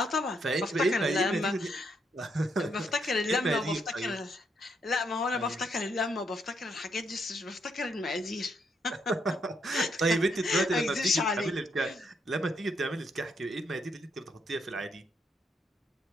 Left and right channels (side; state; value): both; normal; correlation 0.76